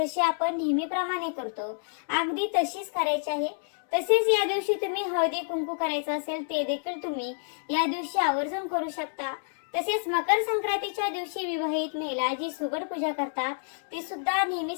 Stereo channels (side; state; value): right; silent; digital silence